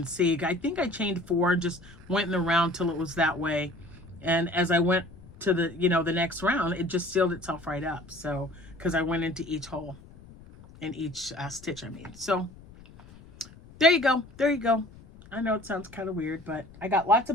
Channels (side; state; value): left; noise; rumble, 21 dB below the sound